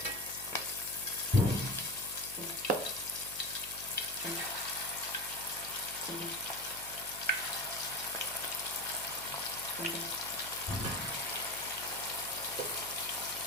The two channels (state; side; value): noise; left; hum, 18 dB below the sound